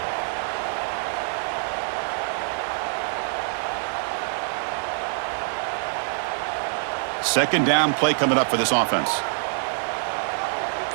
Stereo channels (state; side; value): silent; left; digital silence